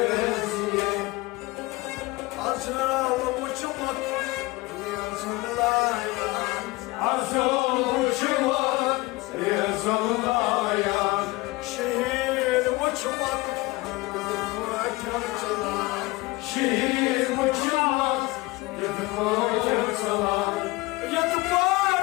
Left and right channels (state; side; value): quieter; right; 21.9 dB